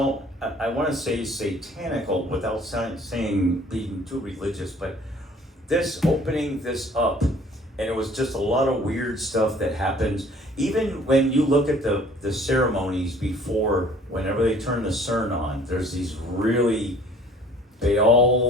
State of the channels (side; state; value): both; normal; correlation 0.54